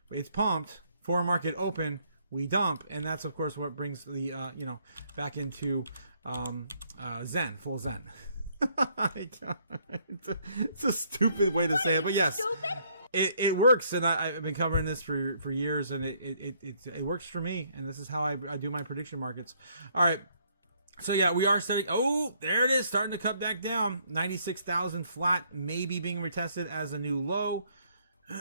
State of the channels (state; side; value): inverted; both; correlation -0.67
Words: it's pumped, foreign market open, we dump, and that's of course what brings the back into Zen, full Zen. It's a stupid way to say it, but yes. Stupid? It works, and I've been covering this for years, and it works for me, and this is how I do my prediction markets. All right, so yeah, we are starting. Oh, there it is, starting to cut back down. 96,000 flat, maybe being retested as a new low.